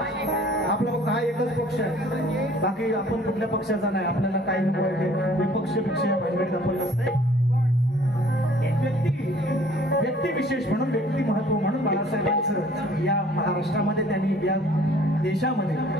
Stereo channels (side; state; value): both; normal; correlation 0.55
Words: आपला फक्त हा एकच पक्ष आहे. बाकी आपण कुठल्या पक्षाचा नाही. आपल्याला काही विपक्ष भानगडीत आपण नसते. व्यक्ती विशेष म्हणून, व्यक्ती महत्व म्हणून बाळासाहेबांचं या महाराष्ट्रामध्ये, त्यांनी या देशामध्ये